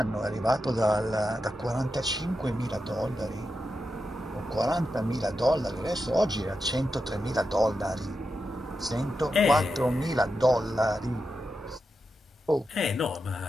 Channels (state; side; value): normal; both; correlation 0.88